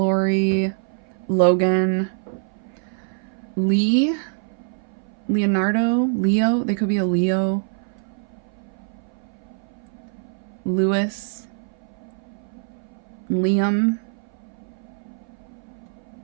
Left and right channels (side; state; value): left; silent; 57 dB below the other